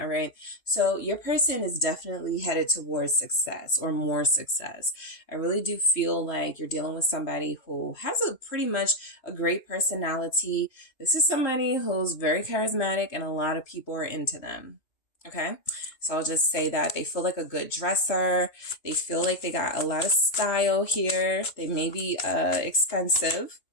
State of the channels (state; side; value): late; right; 2.7 ms